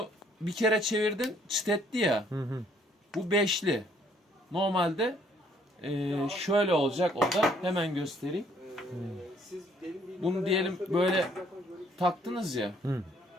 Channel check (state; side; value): normal; both; correlation 0.64